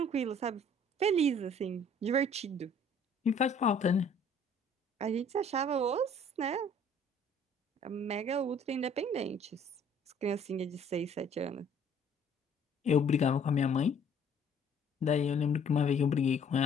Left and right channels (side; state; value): both; normal; correlation 0.57